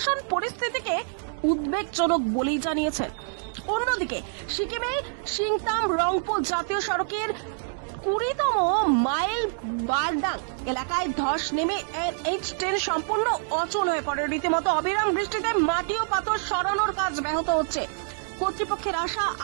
পরিস্থিতিকে উদ্বেগজনক বলেই জানিয়েছেন। অন্যদিকে সিকিমে সিংতাম রংপো জাতীয় সড়কের 20তম মাইল বারডাং এলাকায় ধস নেমে NH10 সম্পূর্ণ অচল হয়ে পড়ে। রীতিমতো অবিরাম বৃষ্টিতে মাটি ও পাথর সরানোর কাজ ব্যাহত হচ্ছে। কর্তৃপক্ষের আশা,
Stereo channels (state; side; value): silent; left; digital silence